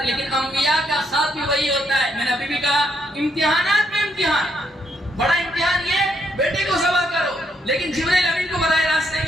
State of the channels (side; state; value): both; normal; correlation 0.74